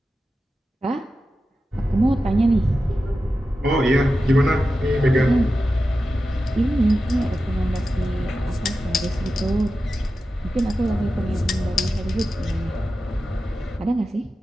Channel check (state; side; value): normal; both; correlation 0.92